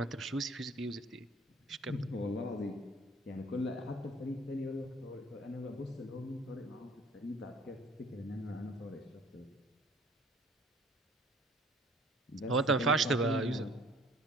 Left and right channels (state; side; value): normal; both; correlation 0.54